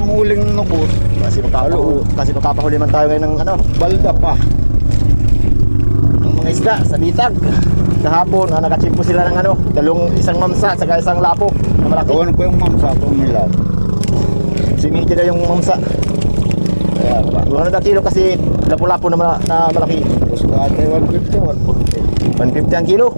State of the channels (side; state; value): both; inverted; correlation -1.00